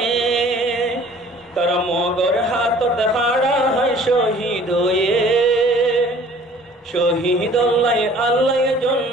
তারা মগর হাততে হাড়া হয় শহীদ হয়ে শহীদ আল্লাহ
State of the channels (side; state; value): both; normal; correlation 0.52